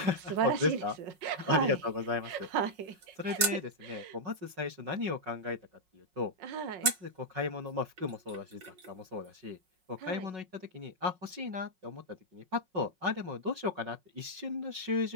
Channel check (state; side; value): late; left; 5.5 ms